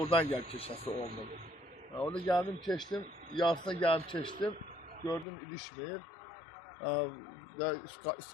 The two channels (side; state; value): right; drops out; at 5.2 s